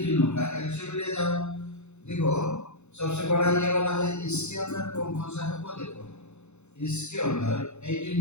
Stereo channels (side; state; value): right; late; 0.82 ms